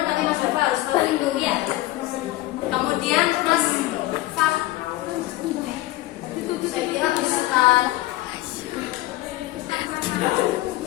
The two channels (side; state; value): right; quieter; 17.2 dB